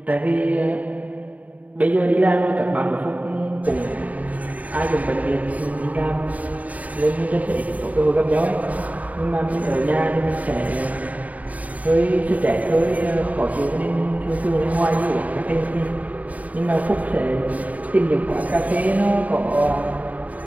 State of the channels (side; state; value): left; late; 0.072 ms